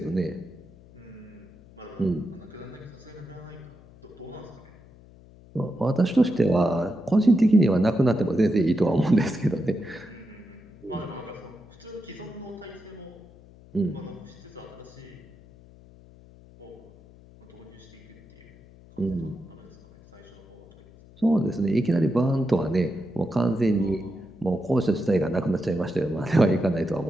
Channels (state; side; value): noise; left; hum, 23 dB below the sound